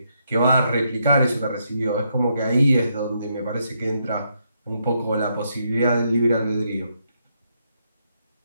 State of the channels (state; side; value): inverted; both; correlation -0.78